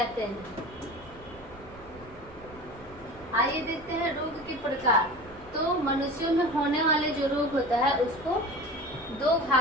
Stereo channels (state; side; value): noise; right; rumble, 21 dB below the sound